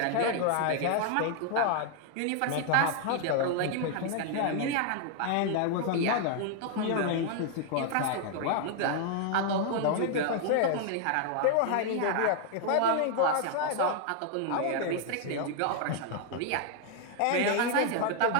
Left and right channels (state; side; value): different; both; correlation 0.00